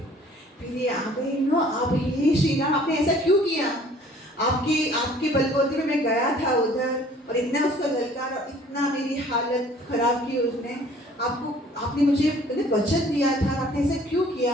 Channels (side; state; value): both; normal; correlation 0.54